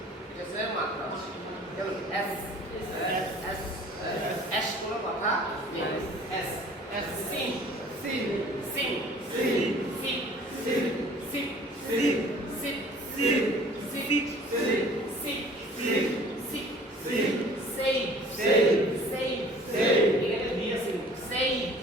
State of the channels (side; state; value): both; normal; correlation 0.50